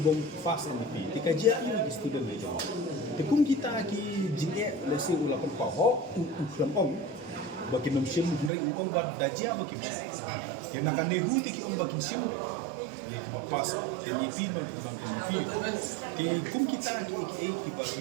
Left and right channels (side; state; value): left; drops out; at 8.5 s